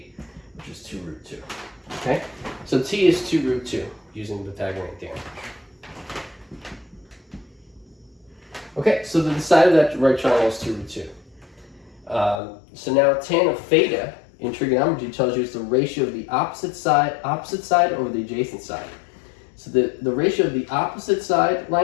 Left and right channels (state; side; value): drops out; right; at 12.4 s